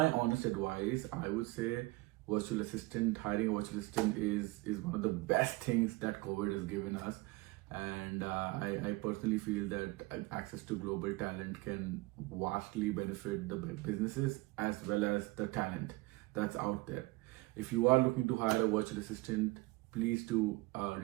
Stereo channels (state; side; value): quieter; left; 21.9 dB